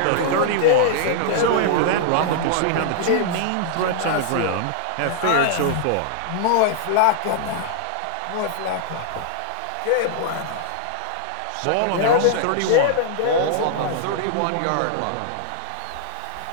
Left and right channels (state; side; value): different; both; correlation -0.01